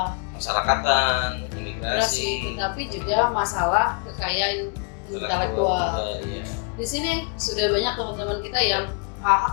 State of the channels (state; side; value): quieter; right; 38.0 dB